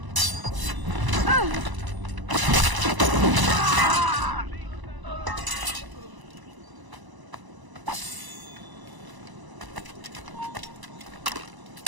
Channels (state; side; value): late; left; 1.0 ms